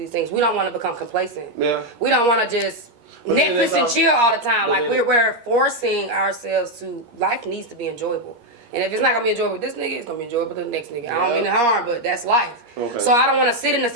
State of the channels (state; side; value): late; left; 13 ms